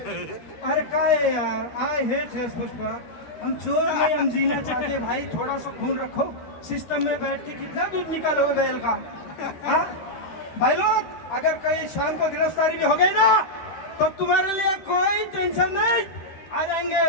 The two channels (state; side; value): late; right; 13 ms